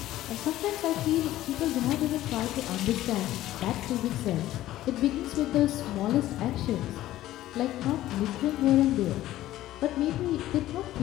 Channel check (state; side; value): quieter; right; 14.6 dB